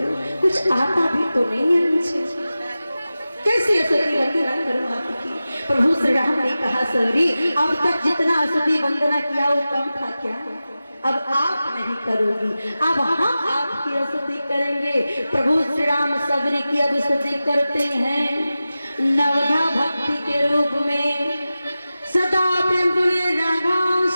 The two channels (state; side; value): inverted; both; correlation -0.95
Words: कुछ आता भी तो नहीं है मुझे, कैसे स्तुति वंदना करूं आपकी? प्रभु श्री राम ने कहा सबरी अब तक जितना स्तुति वंदना किया वो कम था क्या? अब आप नहीं करोगी, अब हम आपकी स्तुति करेंगे। प्रभु श्री राम सबरी की अब स्तुति करते हैं नवधा भक्ति के रूप में। सदा प्रेम तुले राघव